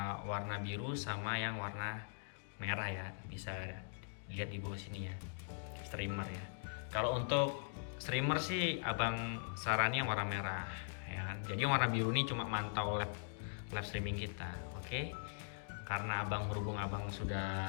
warna biru sama yang warna merah ya, bisa lihat di bawah sini ya, streamer ya. Kalau untuk streamer sih abang sarani yang warna merah ya kan. Jadi yang warna biru ini cuma mantau live streaming kita. Oke. Karena berhubung abang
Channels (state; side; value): silent; right; digital silence